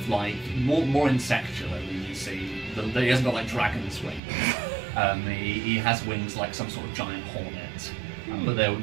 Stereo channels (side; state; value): left; drops out; at 4.2 s